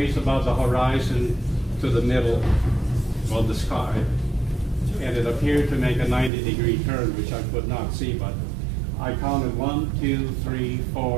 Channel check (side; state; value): left; drops out; at 6.3 s